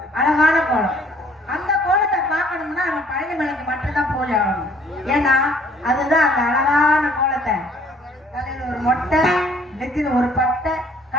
அழகான கோலம். அந்த கோலத்தை பார்க்கணும்னா நம்ம பழனி மலைக்கு மட்டும்தான் போய் ஆகணும். ஏன்னா அதுதான் அந்த அழகான கோலத்தை, தலையில ஒரு மொட்டை, நெத்தில ஒரு பட்டை,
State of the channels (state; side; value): normal; both; correlation 0.59